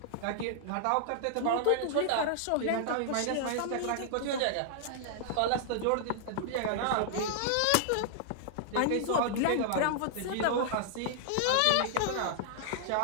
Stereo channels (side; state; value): both; different; correlation -0.01